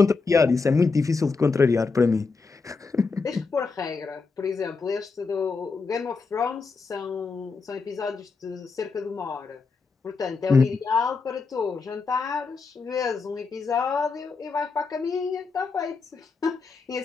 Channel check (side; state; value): right; quieter; 4.5 dB